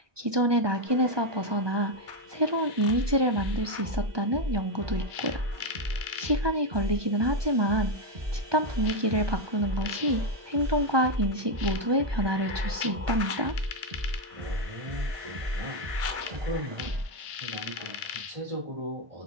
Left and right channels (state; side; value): late; left; 1.2 ms